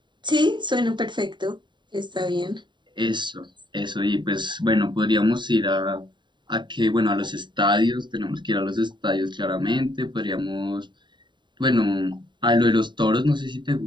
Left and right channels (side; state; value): left; late; 0.22 ms